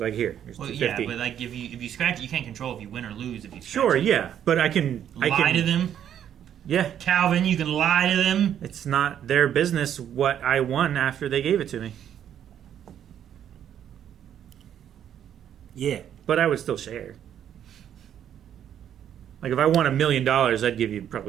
here's Well, $2.50. yeah, but like if you scratch it, you can't control if you win or lose. If you scratch Sure, it. yeah, but I can Lie to them. Yeah, Calvin, you can lie to them. it's not their business what I won after they gave it to me. Yeah. But I would still share. Like if I won $1 million, I'd give you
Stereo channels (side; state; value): left; quieter; 9.8 dB